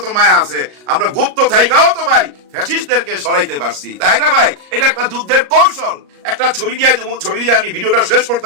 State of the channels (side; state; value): left; late; 38 ms